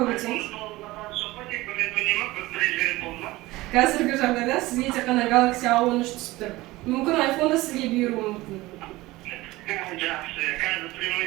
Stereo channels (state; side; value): quieter; left; 19.3 dB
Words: өтсеңіз. Қазіргі жағдайда сізге тек қана Galaxy A13 түсіп тұр. Мүмкін iPhone да сізге бұйыруы мүмкін. Жақсы, қазір прямой